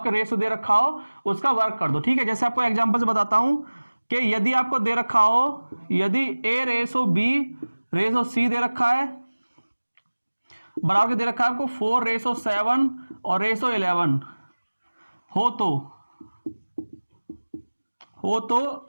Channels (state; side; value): inverted; both; correlation -1.00